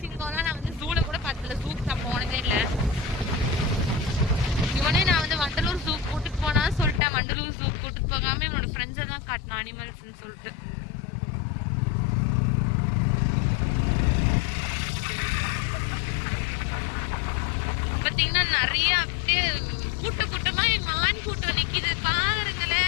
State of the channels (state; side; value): drops out; right; at 7.0 s